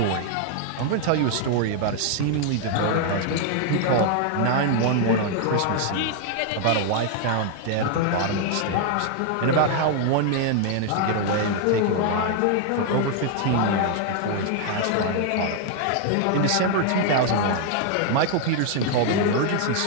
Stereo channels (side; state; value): both; different; correlation 0.00